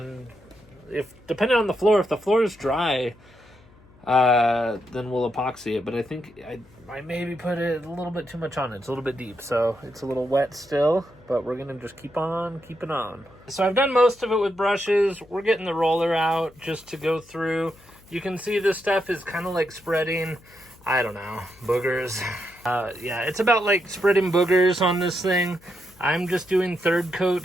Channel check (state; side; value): noise; left; hum, 27 dB below the sound